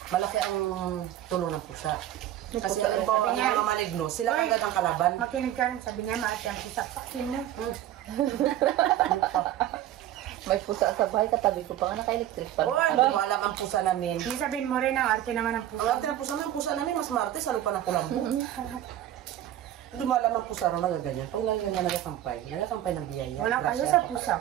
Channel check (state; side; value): quieter; left; 12.5 dB